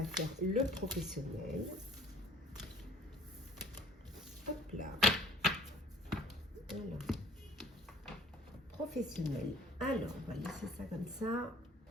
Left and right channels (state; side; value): normal; both; correlation 0.52